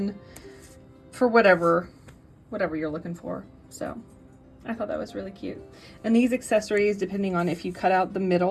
for whatever you're looking for. So I thought that was really cute. And these accessories, depending on if you cut out the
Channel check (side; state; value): both; identical; correlation 1.00